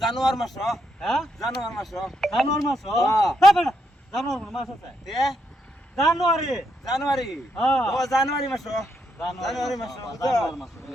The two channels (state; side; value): normal; both; correlation 0.79